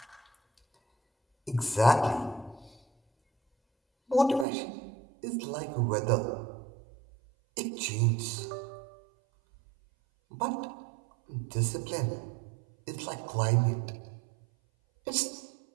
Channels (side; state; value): left; drops out; at 4.5 s